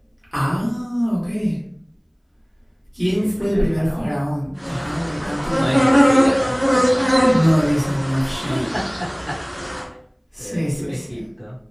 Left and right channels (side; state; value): both; identical; correlation 1.00